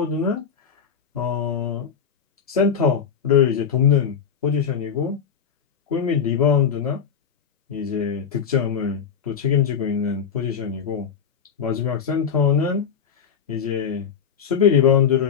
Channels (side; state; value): right; quieter; 7.1 dB